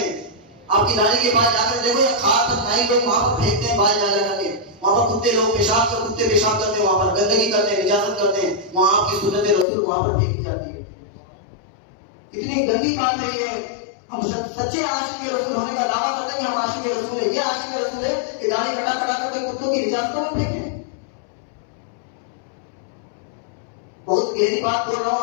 आपकी दाढ़ी के बाल जाकर देखो, या खास पर नाई लोग वहां पर फेंकते हैं बाल लगा के, वहां पर कुत्ते लोग कुत्ते पेशाब करते हैं, वहां पर गंदगी करते हैं, इजाजत करते हैं, वहां आपकी सुन्नत रसूल वहां पर फेंकी जाती है। कितनी गंदी बात है ये। हम सच्चे आशिक रसूल होने का दावा करते हैं कि हम आशिक रसूल है। ये आशिक रसूल है कि दाढ़ी कटा करके कुत्तों की इजाजतों में फेंके। बहुत गहरी बात बोल रहा हूँ,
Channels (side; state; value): right; drops out; at 9.7 s